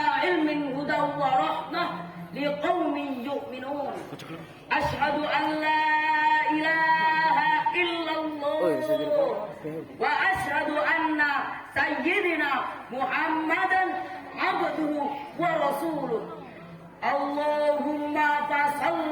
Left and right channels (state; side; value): identical; both; correlation 1.00